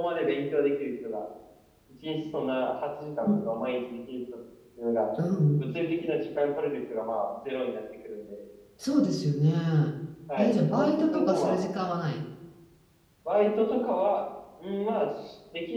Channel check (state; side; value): identical; both; correlation 1.00